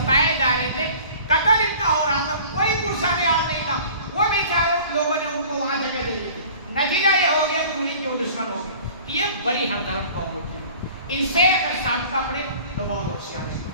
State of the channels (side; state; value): both; inverted; correlation -0.46